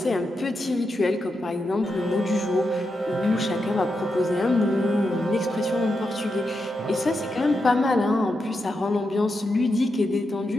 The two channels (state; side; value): normal; both; correlation 0.86